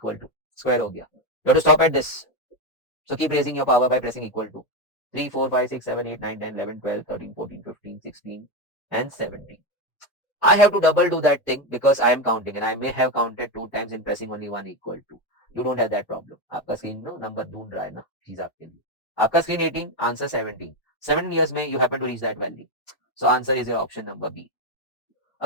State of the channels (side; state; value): right; late; 2.2 ms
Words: टू स्क्वायर हो गया. You have to stop at this. So keep raising your power by pressing equal to 3, 4, 5, 6, 7, 8, 9, 10, 11, 12, 13, 14, 15, 16, and 17. I have to double do that thing because I am counting and I may have counted 2 times in pressing only one equal to. You don't have that problem. आपका screen ना number ढूंढ रहा है ना चीज आपके लिए. आपका स्क्रीन 18, आंसर 17. 7 years में you happen to reach that value. So answer is your option number B.